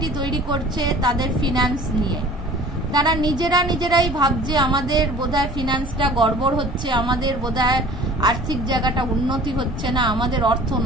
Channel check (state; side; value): normal; both; correlation 0.47